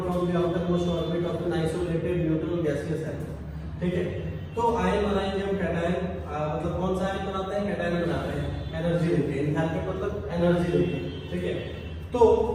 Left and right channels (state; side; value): identical; both; correlation 1.00